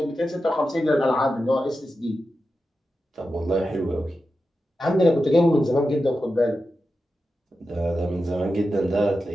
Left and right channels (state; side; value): normal; both; correlation 0.91